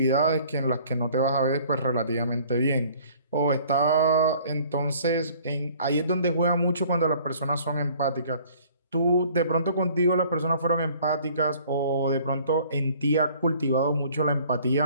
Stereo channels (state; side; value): inverted; both; correlation -0.54